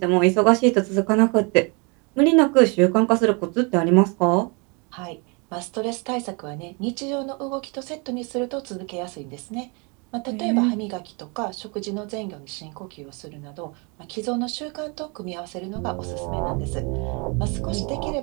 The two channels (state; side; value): quieter; left; 32.1 dB